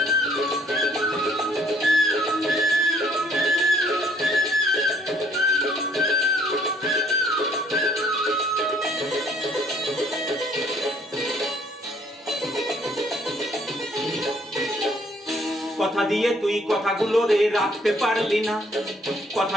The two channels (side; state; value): both; normal; correlation 0.62